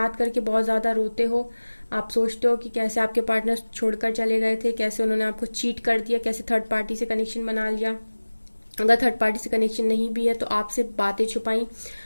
करके बहुत ज़्यादा रोते हो, आप सोचते हो कि कैसे आपके पार्टनर छोड़कर चले गए थे, कैसे उन्होंने आपको चीट कर दिया, कैसे थर्ड पार्टी से कनेक्शन बना लिया। अगर थर्ड पार्टी से कनेक्शन नहीं भी है तो आपसे बातें छुपाई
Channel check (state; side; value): inverted; both; correlation -1.00